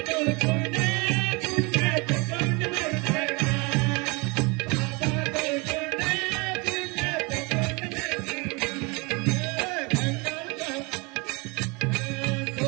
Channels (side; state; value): left; quieter; 28.4 dB